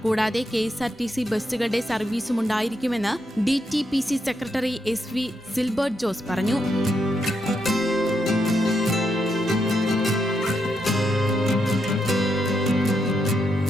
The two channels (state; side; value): normal; both; correlation 0.80